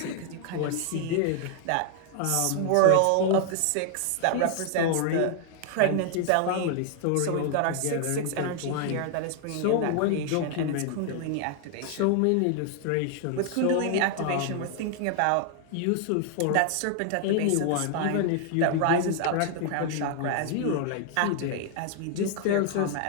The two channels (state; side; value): different; both; correlation 0.00